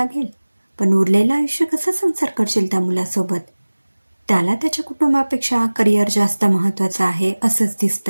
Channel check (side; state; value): both; inverted; correlation -1.00